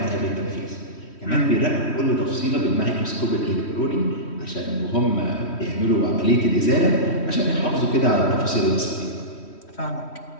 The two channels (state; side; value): late; right; 3.1 ms